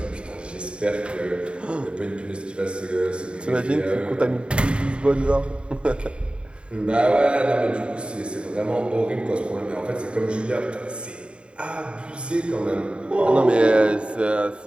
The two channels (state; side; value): late; left; 0.055 ms